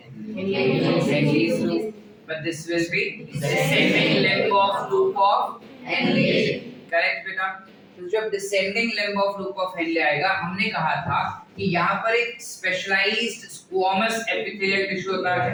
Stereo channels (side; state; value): both; identical; correlation 1.00